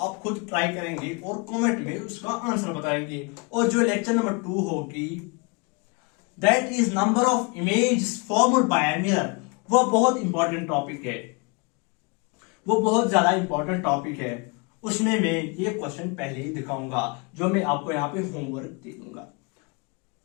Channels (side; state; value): right; quieter; 31.3 dB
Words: खुद ट्राई करेंगे और कमेंट में उसका आंसर बताएंगे। और जो लेक्चर नंबर 2 होगी, that is number of image formed by a mirror. वह बहुत इंपॉर्टेंट टॉपिक है, वो बहुत ज्यादा इंपॉर्टेंट टॉपिक है। उसमें मैं ये क्वेश्चन पहले ही दिखाऊंगा, जो मैं आपको यहाँ पे होमवर्क दे दूंगा।